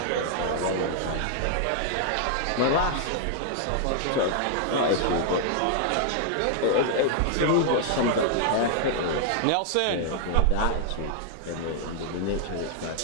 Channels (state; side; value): different; both; correlation 0.00